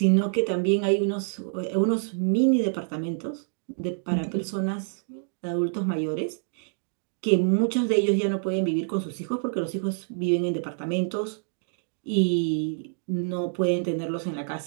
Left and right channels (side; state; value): left; silent; digital silence